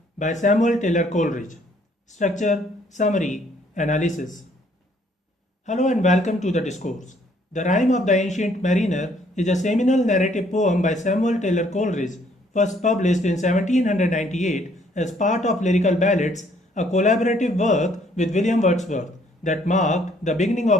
by Samuel Taylor Coleridge. Structure, Summary, Analysis. Hello and welcome to the discourse. The Rime of the Ancient Mariner is a seminal narrative poem by Samuel Taylor Coleridge, first published in 1798 as part of Lyrical Ballads, a collaborative work with William Wordsworth that marked the beginning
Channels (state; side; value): normal; both; correlation 0.64